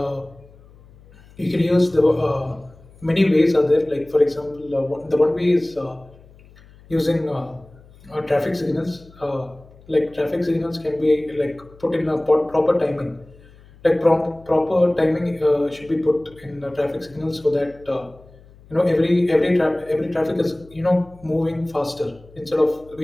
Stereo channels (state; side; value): noise; left; hum, 25 dB below the sound